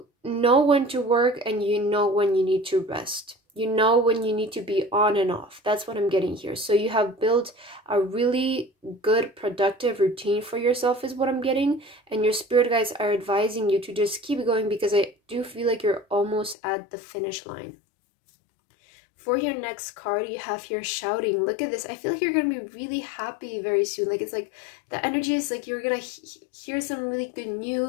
know when to work and you know when you need to rest. You know when you need to be on and off. That's what I'm getting here. So you have built a really good, productive routine for yourself is what I'm getting. And your spirit guides are advising you to just keep going, because I do feel like you're almost at the finish line. For your next card, you have here shouting. Look at this. I feel like you're going to be really happy very soon. Like, it's like the energy is like you're going to hear some really good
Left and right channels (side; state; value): right; drops out; at 16.6 s